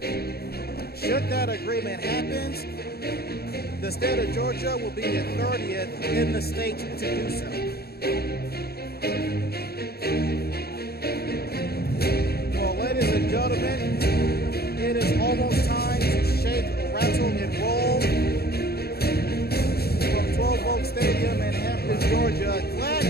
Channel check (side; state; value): right; late; 0.46 ms